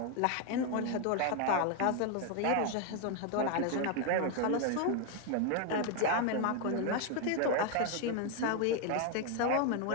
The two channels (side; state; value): both; different; correlation 0.01